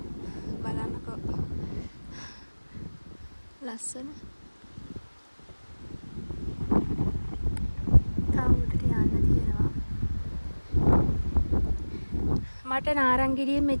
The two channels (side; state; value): both; inverted; correlation -1.00